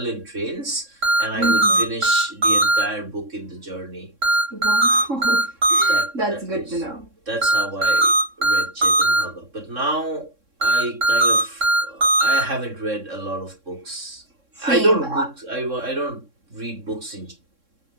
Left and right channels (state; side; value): late; left; 3.6 ms